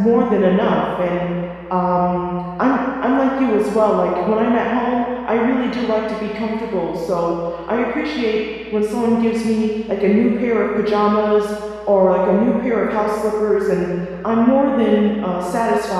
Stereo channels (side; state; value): both; identical; correlation 1.00